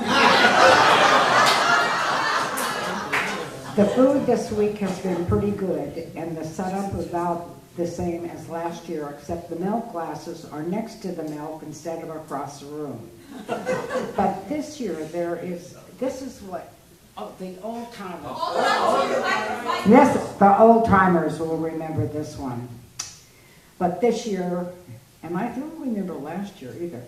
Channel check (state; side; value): identical; both; correlation 1.00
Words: The food this week has been pretty good, and the setup is about the same as last year, except the milk glasses are next to the milk instead of across the room. But this year this is what, the old timers. The old timers will remember this one. But this year, and I don't remember last year either,